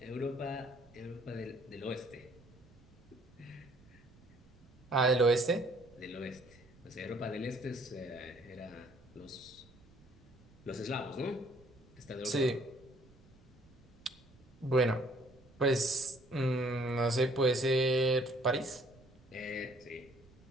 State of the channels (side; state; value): right; noise; rumble, 26 dB below the sound